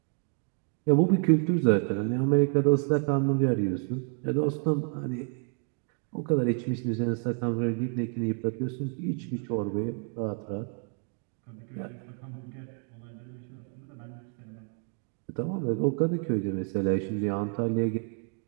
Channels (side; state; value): left; quieter; 38.4 dB